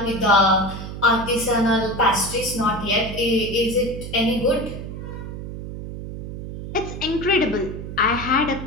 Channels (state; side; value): noise; right; hum, 9 dB below the sound